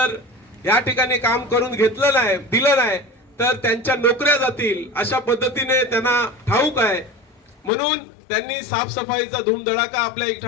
या ठिकाणी काम करून घेतलं नाही, दिलं नाही तर त्यांच्या नोकऱ्या जातील अशा पद्धतीने त्यांना ठाऊक आहे. म्हणून त्यांनी साफसफाईचा धूमधडाका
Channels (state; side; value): drops out; right; at 7.7 s